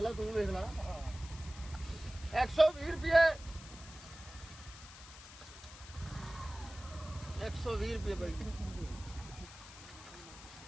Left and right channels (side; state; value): left; noise; hiss, 16 dB below the sound